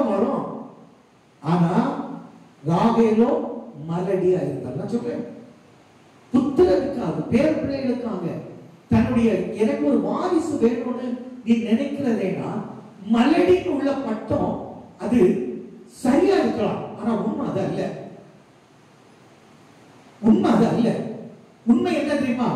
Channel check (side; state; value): both; identical; correlation 1.00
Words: வரும்? ஆனா ராகேலோ மலடியா இருந்தார். நான் சொல்றேன், புத்திரனுக்காக பேர் பிள்ளைகளுக்காக தன்னுடைய எனக்கு ஒரு வாரிசு வேணும்னு நீ நினைக்கிறதேனா மலடின்னு உள்ள பட்டம் அது சரியா இருக்கலாம். ஆனா உண்மை அது அல்ல. உண்மை அது அல்ல. உண்மை என்ன தெரியுமா?